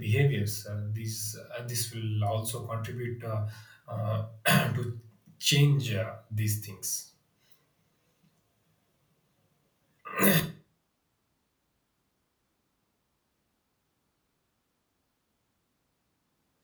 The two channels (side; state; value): both; identical; correlation 1.00